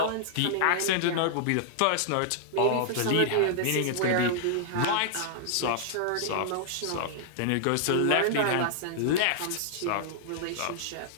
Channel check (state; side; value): different; both; correlation -0.01